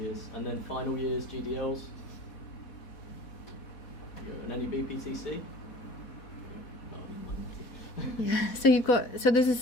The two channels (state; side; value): late; right; 4.2 ms